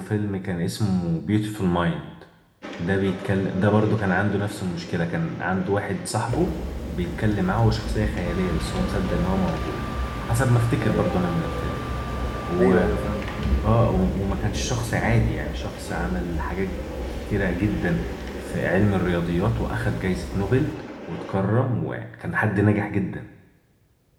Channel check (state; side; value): identical; both; correlation 1.00